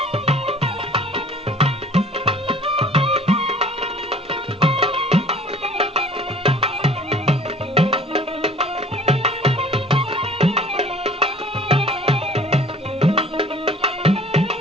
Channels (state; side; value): normal; both; correlation 0.50